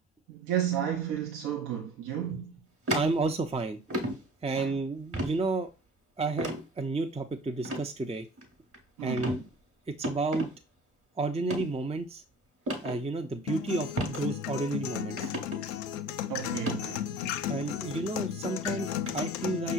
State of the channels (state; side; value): normal; both; correlation 0.43